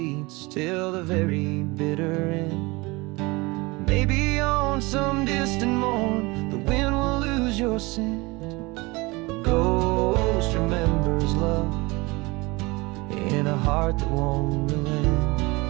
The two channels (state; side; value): quieter; left; 24.1 dB